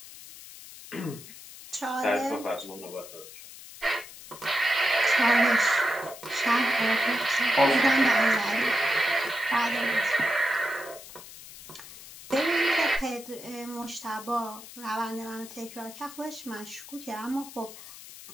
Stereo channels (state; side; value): noise; left; hiss, 16 dB below the sound